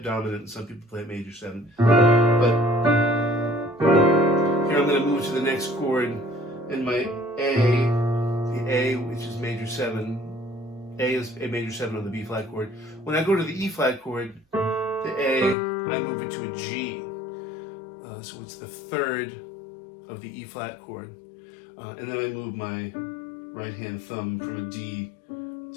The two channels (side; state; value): right; drops out; at 15.6 s